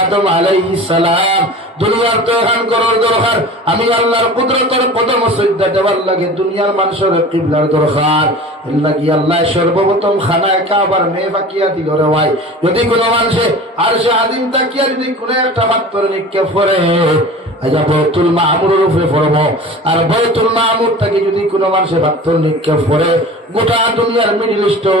আদম আলাইহিস সালাম দুনিয়ার তো এখন করার দরকার, আমি আল্লাহর কুদরতের কদম সজদা দেওয়ার লাগে দুনিয়ার মানুষের কিবলার দরকার। এর লাগি আল্লাহ সর্বপ্রথম খানায় কাবার মেয়ে বাকিয়া দিল রে ভাই। যদি কোনো মানুষে আর সে আদিম তাকিয়া যদি কোনো একটা পাত্র নিক্ষেপ করে, আচ্ছা বয়তুল মামুরের উপরে পড়বো, আর বয়তুল মামুর থেকে যদি কোনো মানুষের পাত্র নিক্ষেপ করে, গোটা দুনিয়ার মিডিল ইস্ট,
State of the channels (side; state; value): both; normal; correlation 0.38